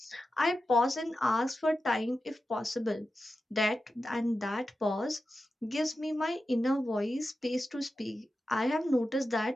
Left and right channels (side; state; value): both; normal; correlation 0.91